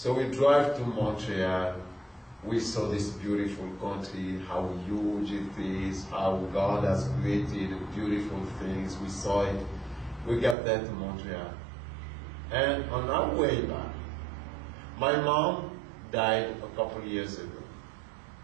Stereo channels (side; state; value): left; drops out; at 10.6 s